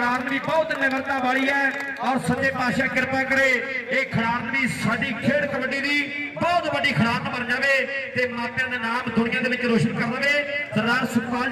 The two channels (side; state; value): both; identical; correlation 1.00